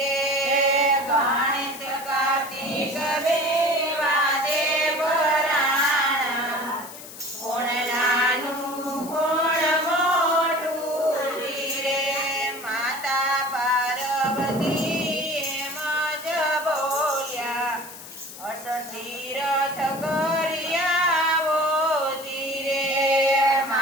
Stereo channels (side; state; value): left; noise; hiss, 15 dB below the sound